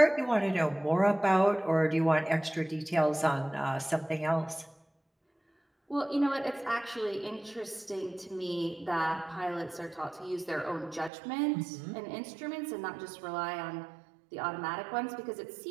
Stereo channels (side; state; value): left; drops out; at 11.1 s